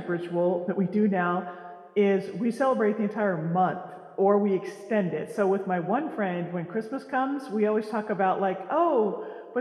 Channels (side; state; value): both; identical; correlation 1.00